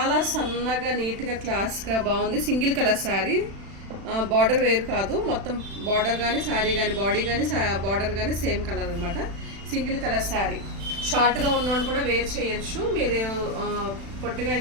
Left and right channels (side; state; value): left; late; 36 ms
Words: సన్నగా, నీట్గా, క్లాస్గా బాగుంది. సింగిల్ కలర్ శారీ, బార్డర్ వేరు కాదు, మొత్తం బార్డర్ కానీ శారీ కానీ బాడీ కానీ బార్డర్ కానీ సేమ్ కలర్ అనమాట. Single colour sari. షార్ట్గా ఉన్నోళ్ళు కూడా వేర్ చేయొచ్చు, మీరు పొట్టిగా